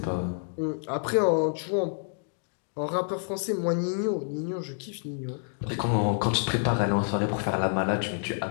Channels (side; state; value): right; silent; digital silence